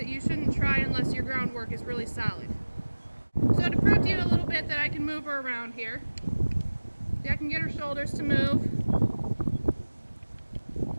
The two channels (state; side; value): inverted; both; correlation -1.00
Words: you shouldn't try unless your groundwork is really solid. So to prove to you a little bit that I can move her around here, see, I can get her shoulders to move.